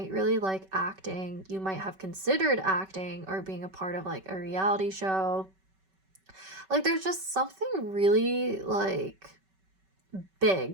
really like acting, you might have considered acting or being a part of like a reality show. Like there's just something really like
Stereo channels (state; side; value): late; left; 5.2 ms